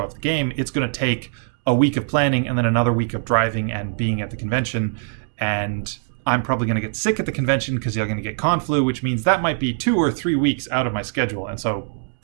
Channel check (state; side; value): silent; left; 64 dB below the other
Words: off the game. It's going to take a week of planning and then another week of driving and being at the convention, and I'm probably going to get sick at the convention because you're going to get con flu, which means that might be 2 or 3 weeks out of my schedule, and so